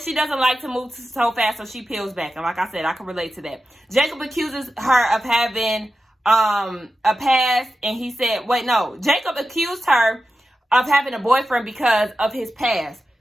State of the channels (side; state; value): both; normal; correlation 0.91